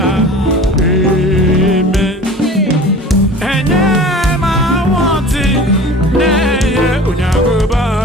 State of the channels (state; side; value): normal; both; correlation 0.40